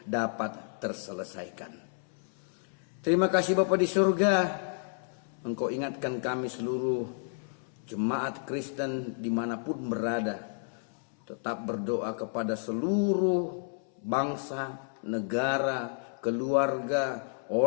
dapat terselesaikan. Terima kasih Bapa di surga. Engkau ingatkan kami seluruh jemaat Kristen dimanapun berada. Tetap berdoa kepada seluruh bangsa, negara, keluarga,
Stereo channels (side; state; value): right; silent; 57 dB below the other